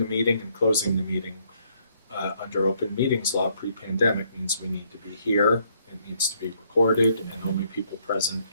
meeting and closing the meeting under open meetings law pre-pandemic means we need to be here, it needs to be recorded, and only people present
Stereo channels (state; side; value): inverted; both; correlation -0.69